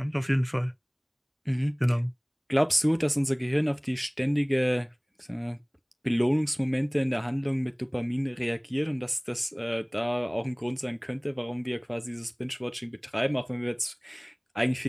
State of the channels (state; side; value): identical; both; correlation 1.00